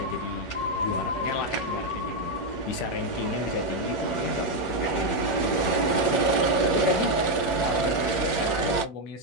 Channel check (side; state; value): right; late; 9.7 ms